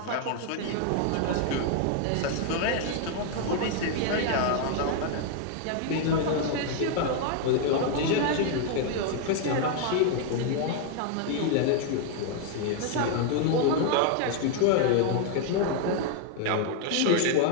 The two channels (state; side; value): different; both; correlation 0.00